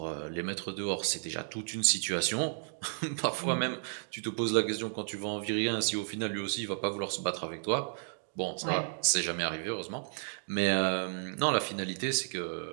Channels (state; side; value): silent; left; digital silence